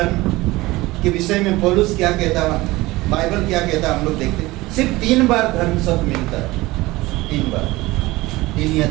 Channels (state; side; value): quieter; left; 19.9 dB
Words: के विषय में पौलुस क्या कहता है, बाइबल क्या कहता है, हम लोग देखते हैं। सिर्फ 3 बार धर्म शब्द मिलता है, 3 बार, 3 या